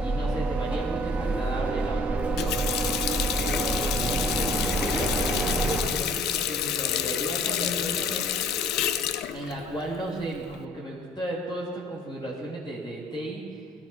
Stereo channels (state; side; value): normal; both; correlation 0.56